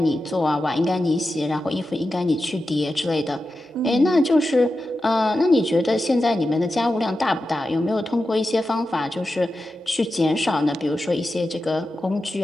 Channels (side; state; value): both; normal; correlation 0.91